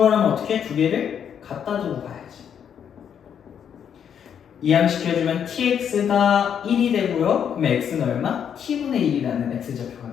어떻게? 두 개를 갖다 두고 가야지. 이항시켜주면 tx가 1이 되고요. 그럼 x는 얼마? t분의 1이라는 x좌표가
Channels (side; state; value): right; quieter; 8.3 dB